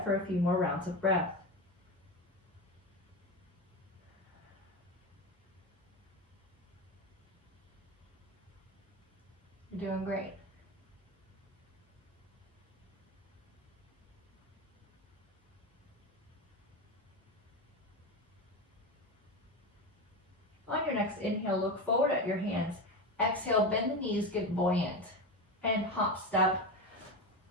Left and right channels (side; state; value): both; normal; correlation 0.19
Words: for a few more rounds of breath. You're doing great. On your next inhale, look forward at your hands. Exhale, bend the knees, get buoyant. And hop, step,